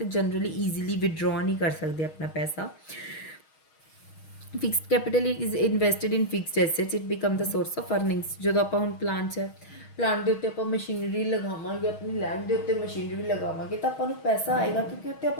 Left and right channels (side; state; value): right; late; 6.3 ms